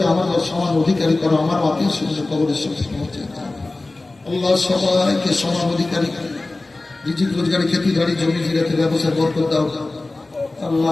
আমার সমান অধিকারী করো, আমার আত্মীয় স্বজন কবরের সাথে পৌঁছে দাও। আল্লাহ সবাইকে সমান অধিকারী, রিজিক রোজগারি, খেতি বাড়ি, জমি জিরাতে ব্যবসায় বরকত দাও।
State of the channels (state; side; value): quieter; right; 3.1 dB